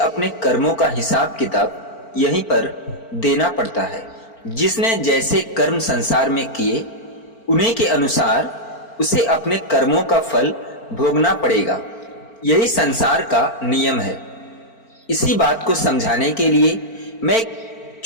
कर्मों का हिसाब किताब यहीं पर देना पड़ता है। जिसने जैसे कर्म संसार में किए उन्हीं के अनुसार उसे अपने कर्मों का फल भोगना पड़ेगा। यही संसार का नियम है। इसी बात को समझाने के लिए मैं एक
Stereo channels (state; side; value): late; right; 4.4 ms